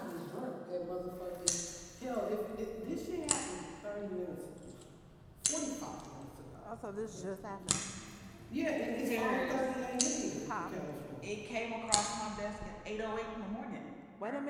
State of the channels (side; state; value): both; identical; correlation 1.00